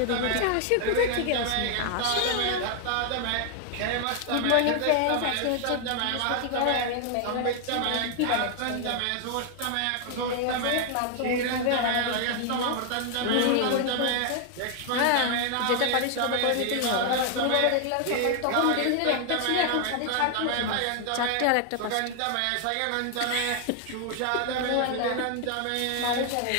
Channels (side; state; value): both; different; correlation 0.00